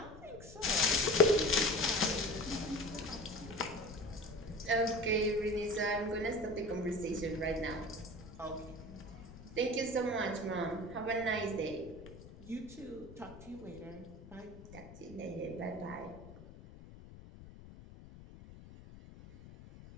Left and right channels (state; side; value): noise; left; rumble, 16 dB below the sound